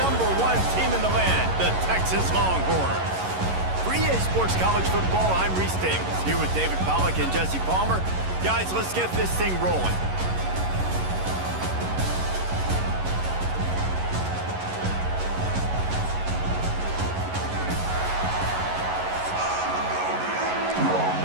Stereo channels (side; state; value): left; late; 11 ms